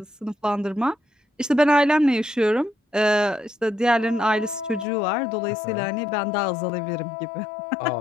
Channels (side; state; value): right; drops out; at 4.9 s